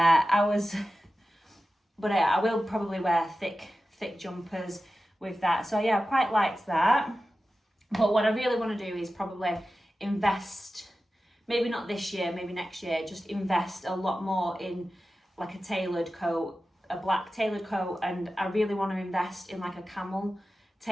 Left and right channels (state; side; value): normal; both; correlation 0.94